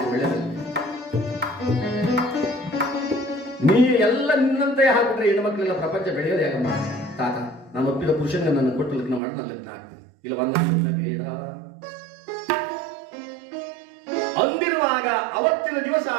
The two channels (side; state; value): left; drops out; at 9.2 s